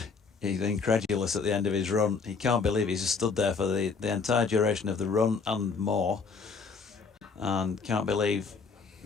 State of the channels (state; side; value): quieter; right; 5.0 dB